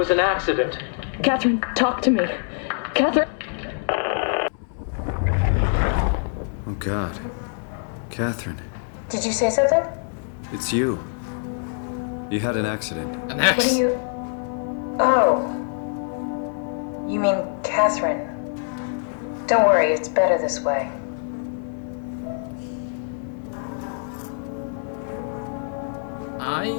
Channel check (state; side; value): silent; right; 62 dB below the other